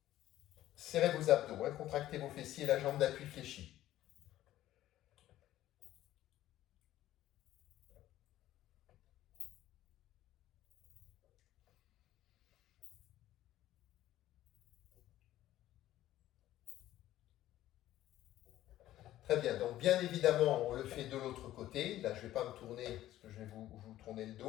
Serrez vos abdos, hein, contractez vos fessiers, la jambe d'appui fléchie. Très bien, donc bien évidemment, on le fait de l'autre côté. Là, je ne vais pas me tourner parce que je vais vous tourner le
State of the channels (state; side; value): quieter; right; 13.9 dB